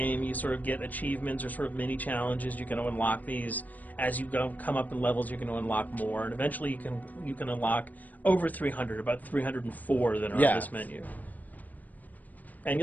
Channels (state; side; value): late; right; 0.080 ms